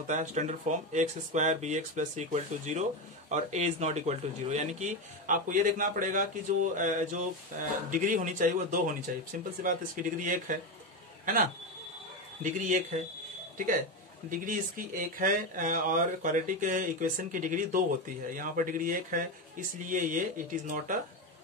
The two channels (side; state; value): both; normal; correlation 0.14